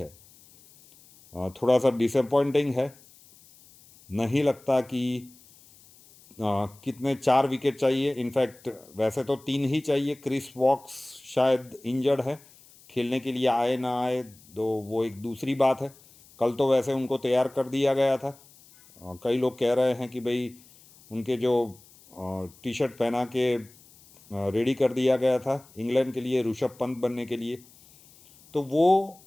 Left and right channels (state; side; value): noise; left; hiss, 26 dB below the sound